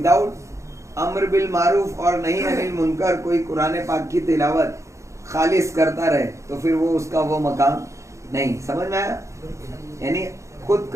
امر بالمعروف اور نہی عن المنکر کوئی قرآن پاک کی تلاوت خالص کرتا رہے تو پھر وہ اس کا وہ مقام نہیں۔ سمجھ میں آیا؟ یعنی خود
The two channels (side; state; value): left; late; 0.14 ms